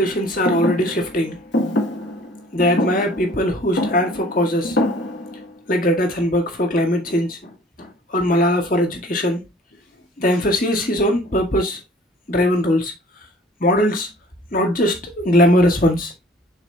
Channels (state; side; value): normal; both; correlation 0.52